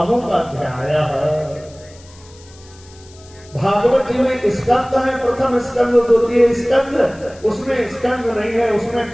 अध्याय है। भागवत जी में स्कंद है, प्रथम स्कंद, द्वितीय स्कंद, उसमें स्कंद नहीं है,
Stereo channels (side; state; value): left; noise; hiss, 25 dB below the sound